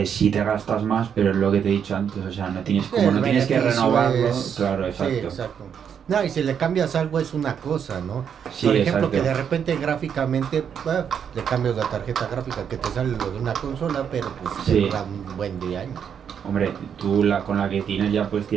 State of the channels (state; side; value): quieter; left; 7.9 dB